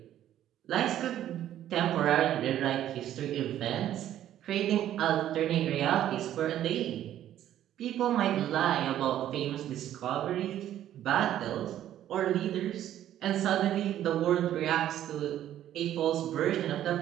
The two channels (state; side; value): quieter; left; 11.9 dB